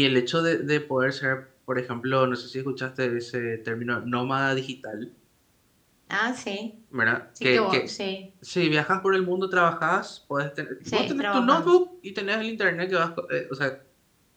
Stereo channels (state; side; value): identical; both; correlation 1.00